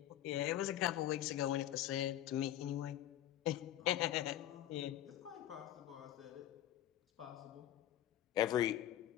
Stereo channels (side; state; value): right; quieter; 12.6 dB